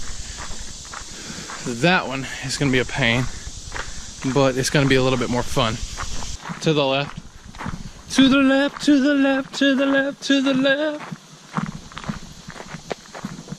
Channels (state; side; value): identical; both; correlation 1.00